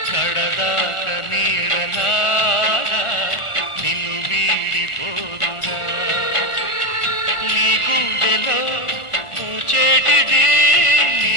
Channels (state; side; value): late; right; 1.5 ms